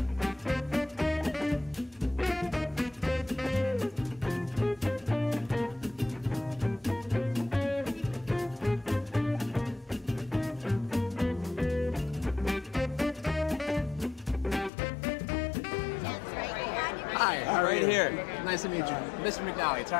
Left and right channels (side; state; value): right; drops out; at 14.7 s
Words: Hi, how are Right you? here. Nice to meet you. Mr. McNally,